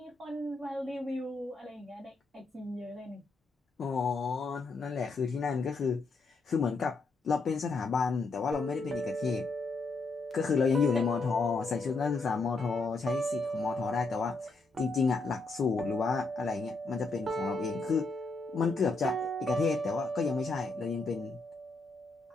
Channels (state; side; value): quieter; right; 3.6 dB